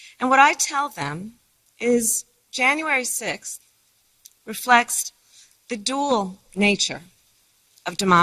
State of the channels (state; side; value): identical; both; correlation 1.00